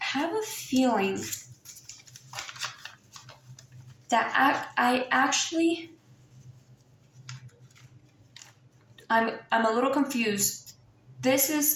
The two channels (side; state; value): both; identical; correlation 1.00